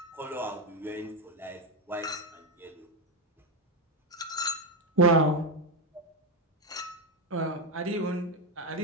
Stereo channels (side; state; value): both; normal; correlation 0.08